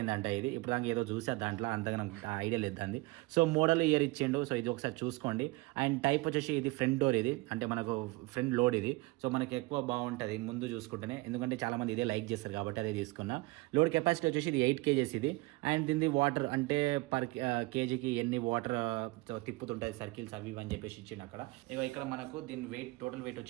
ఇది ఇప్పుడు దాకా ఏదో చూసా దాంట్లో, అంతగా నాకు ఐడియా లేదు దాన్ని. సో మోడల్ ఇయర్ ఇచ్చిండు. సో ఇది ఒకసారి చూసుకోండి. అండ్ టైప్ వచ్చేసి ఇది ఫ్రంట్ డోర్, ఇది అంటే మనకు ఫ్రంట్ లోడ్ ఇది. సో మనకి ఎక్కువ బాగుంటుంది ముందు చూసుకుంటేనే, ఎందుకంటే చాలామంది ఇదే లైక్ చేస్తారు కాబట్టి అదే తీసుకున్నా. లోడ్ కెపాసిటీ వచ్చేసి ఇది 8 kgs ఇది. అండ్ దీని వాటర్ అంటే పర్ కేజీకి ఎన్ని వాటర్ తిప్పుతుంటుంది సర్కిల్స్ అవి అని చెప్పేసి ఇచ్చింది అక్కడ. ఇక్కడ మనకు దీని వెయిట్ టోటల్ వెయిట్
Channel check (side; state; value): left; quieter; 22.6 dB